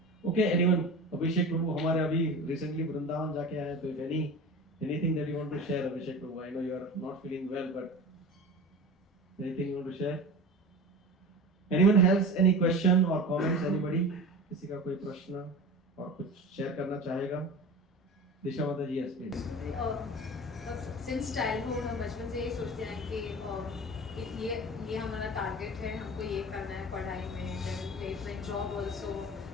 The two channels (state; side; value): normal; both; correlation 0.33